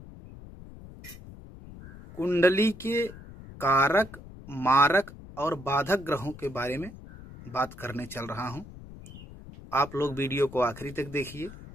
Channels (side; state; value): left; noise; rumble, 16 dB below the sound